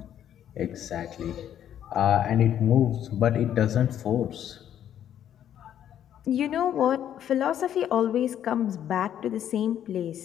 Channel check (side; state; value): right; quieter; 10.4 dB